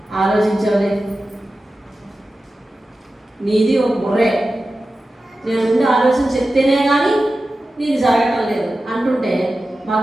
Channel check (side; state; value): both; normal; correlation 0.94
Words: ఆలోచించవలే, నీది ఒక బుర్రే, నేను ముందు ఆలోచన చెప్తేనే కానీ నీది జరగటం లేదు అంటుంటే